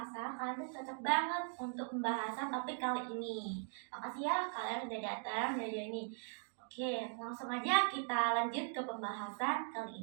kalian tuh cocok banget untuk pembahasan topik kali ini. Makasih ya kalian sudah datang dari ini. Oke, langsung aja kita lanjut ke pembahasan kali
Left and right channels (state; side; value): silent; left; 51 dB below the other